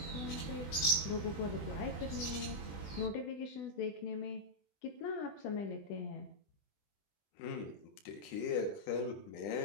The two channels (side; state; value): right; late; 20 ms